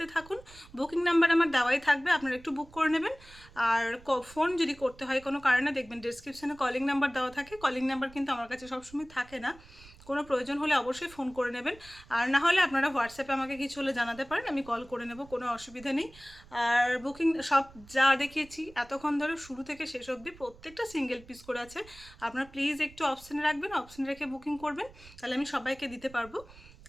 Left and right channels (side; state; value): right; noise; rumble, 22 dB below the sound